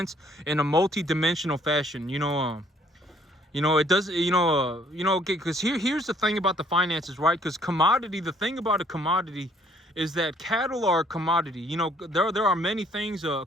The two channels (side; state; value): both; normal; correlation 0.63